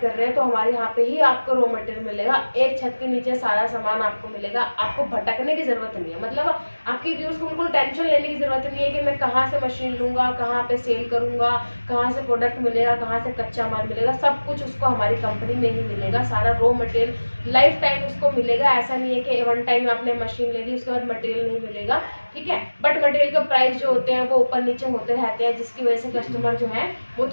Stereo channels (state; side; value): inverted; both; correlation -1.00